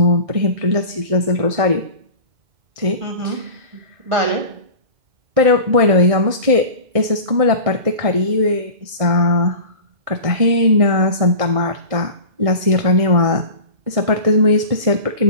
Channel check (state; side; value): late; left; 1.6 ms